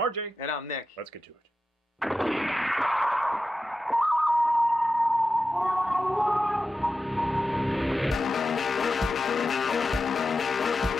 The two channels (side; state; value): both; normal; correlation 0.91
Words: And I'm Nick. Let's get to it.